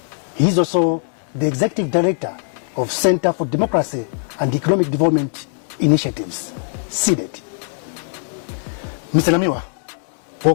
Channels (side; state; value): right; silent; digital silence